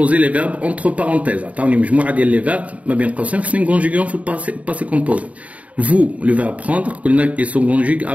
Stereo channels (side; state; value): left; late; 0.068 ms